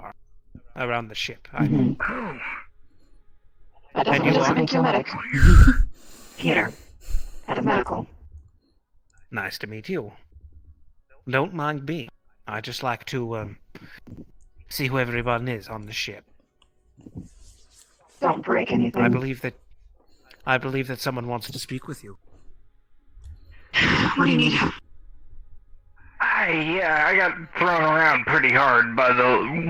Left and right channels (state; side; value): identical; both; correlation 1.00